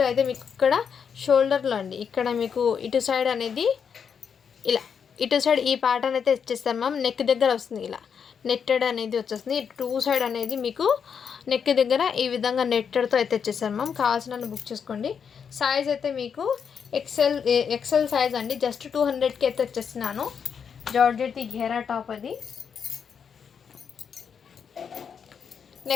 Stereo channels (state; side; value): quieter; right; 6.9 dB